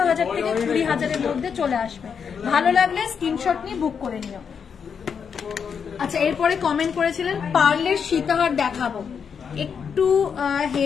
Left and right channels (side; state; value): right; quieter; 6.7 dB